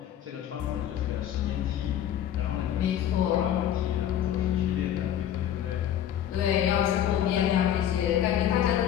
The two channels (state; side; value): quieter; right; 10.7 dB